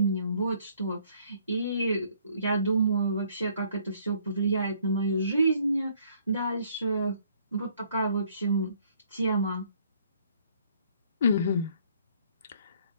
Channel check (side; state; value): both; inverted; correlation -0.63